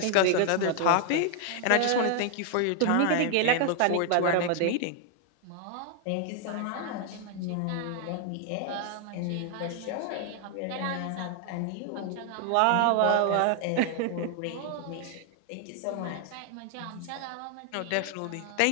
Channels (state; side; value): different; both; correlation 0.00